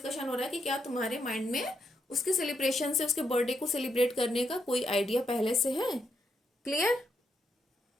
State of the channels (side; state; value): both; normal; correlation 0.79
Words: हो रहा है कि क्या तुम्हारे माइंड में उसके सेलिब्रेशन से, उसके बर्थडे को सेलिब्रेट करने का कोई आइडिया पहले से है। क्लियर।